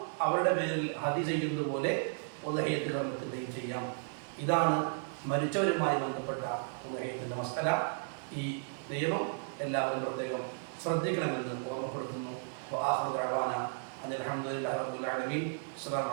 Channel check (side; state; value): left; silent; digital silence